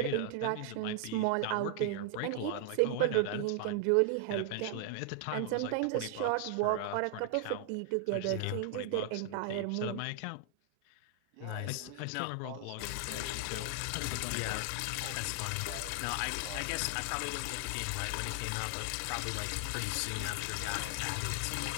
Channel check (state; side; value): different; both; correlation 0.00